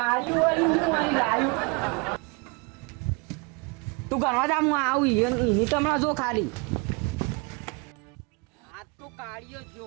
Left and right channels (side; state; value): left; quieter; 30.9 dB